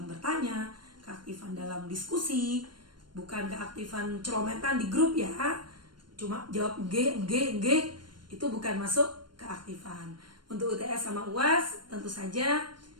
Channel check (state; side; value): late; left; 0.72 ms